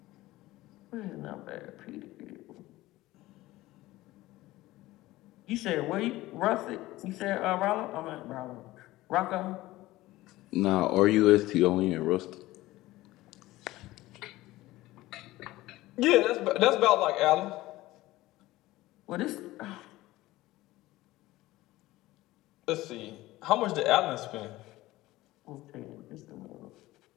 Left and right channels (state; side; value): quieter; right; 17.7 dB